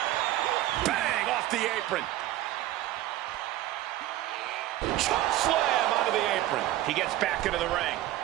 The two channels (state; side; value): quieter; left; 14.6 dB